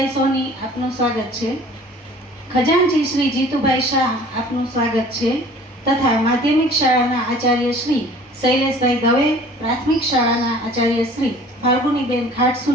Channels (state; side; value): normal; both; correlation 0.49